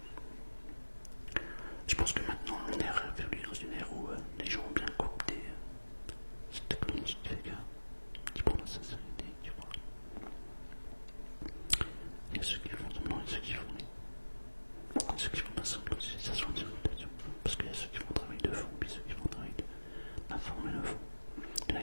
Je pense que maintenant on est revenu dans une ère où les gens ont bien coopté cette technologie qui fait qui prend la sincérité, tu vois. Il y a ceux qui font semblant et ceux qui font pas semblant, ça se voit en direct, parce qu'il y a ceux qui font un travail de fond, puis ceux qui font un travail d'informer le fond. Il y en a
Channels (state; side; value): inverted; both; correlation -1.00